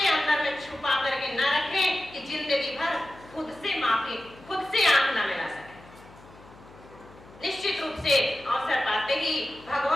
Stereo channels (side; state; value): left; noise; hum, 22 dB below the sound